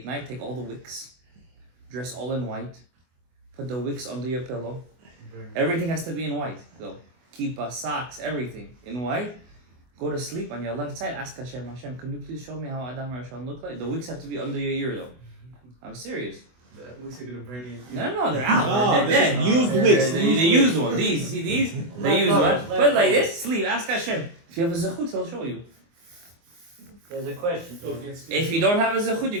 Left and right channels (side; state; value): left; late; 24 ms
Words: night, take all the wicks, dress all in white, put the wicks under your pillow. Everything has to be in white, though. Kippah, socks, everything in white. Go to sleep on your left side. Ask Hashem, can you please show me how Adam Rishon look like? The wicks have to be under your ear, though. I'm serious. The wicks are gonna burn you. No, they're out. They're dead. Used wicks. They used one. These, see these? They used one. Put it like this. Sleep. Ask Hashem. If you have a zechut, He'll show you. There's a question. If you don't have a zechut, you're